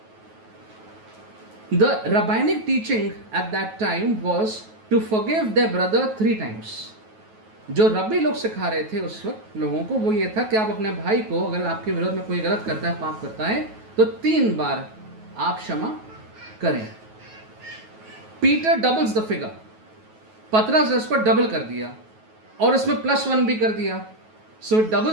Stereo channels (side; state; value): left; late; 9.3 ms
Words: The rabbinic teaching at that time was to forgive their brother 3 times. जो रब्बी लोग सिखा रहे थे उस वक्त लोगों को वो ये था कि आप अपने भाई को अगर आपके विरोध में कोई गलत करता है, पाप करता है, तो 3 बार आप क्षमा करें. Peter doubles the figure. पतरस ने इसको डबल कर दिया और इसमें +1 भी कर दिया. So it